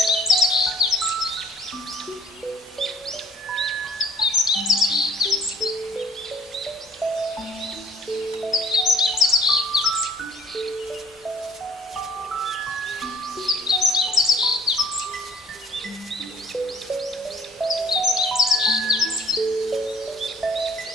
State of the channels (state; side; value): normal; both; correlation 0.56